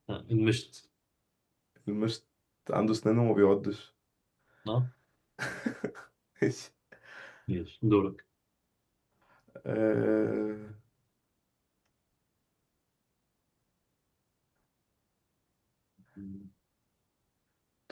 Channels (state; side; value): identical; both; correlation 1.00